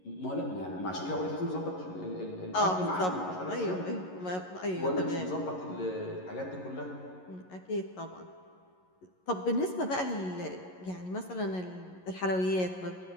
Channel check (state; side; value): late; right; 11 ms